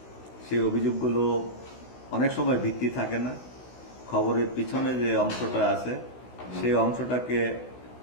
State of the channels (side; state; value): right; late; 16 ms